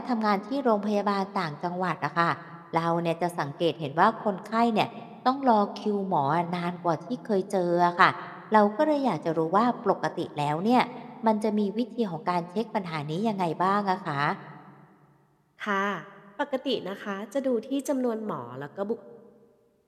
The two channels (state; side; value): identical; both; correlation 1.00